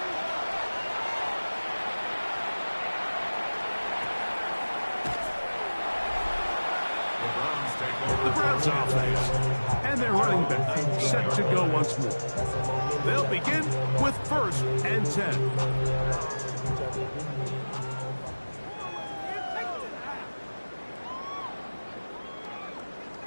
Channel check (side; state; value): both; inverted; correlation -1.00